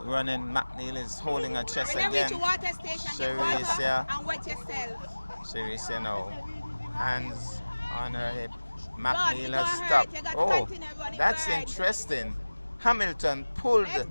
running. McNeil is holding her chest When you reach again. the water station, get Sharice, water yeah. and wet yourself. Sharice now, hands on her hip. God, McNeil you has got hurt. stopped. You got to Oh, continue running that's right. interesting. Hamilton pulled. Let's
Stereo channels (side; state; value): both; inverted; correlation -1.00